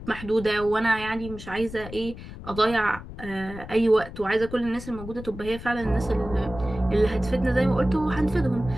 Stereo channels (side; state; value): left; noise; rumble, 13 dB below the sound